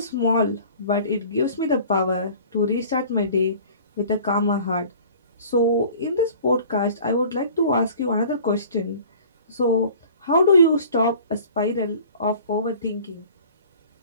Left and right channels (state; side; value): inverted; both; correlation -0.46